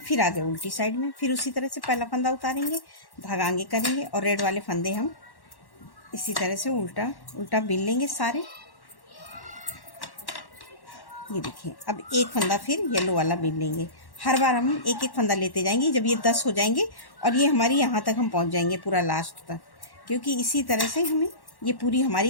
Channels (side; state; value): right; late; 1.1 ms